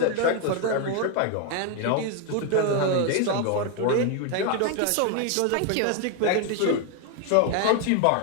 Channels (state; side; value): different; both; correlation 0.01